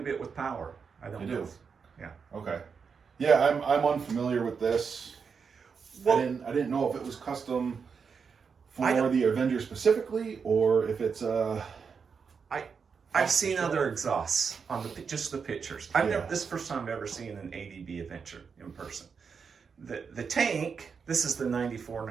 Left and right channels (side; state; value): left; quieter; 5.9 dB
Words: bit with power. I don't know. Yeah. Okay. Yeah, I'm unfamiliar with this. Well, I didn't know if it was custom for the Avenger specifically, or if it's I've seen other exhausts on just the pictures. This is the first time I've ever seen an ADB Avenger in person. the tank, this is the